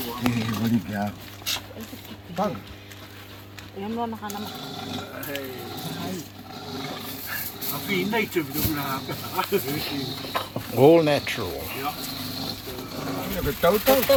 Có đi kìa. Vâng. Yan mo naka naman. All natural. Cái tấu tấu.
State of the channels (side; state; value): both; identical; correlation 1.00